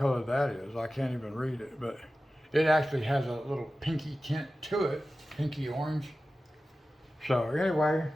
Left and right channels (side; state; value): both; normal; correlation 0.95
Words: that is. I can't even read it, but it actually has a little pinky tint to it, pinky orange. So anyway,